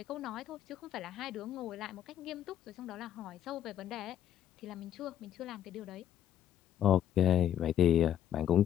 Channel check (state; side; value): quieter; right; 10.7 dB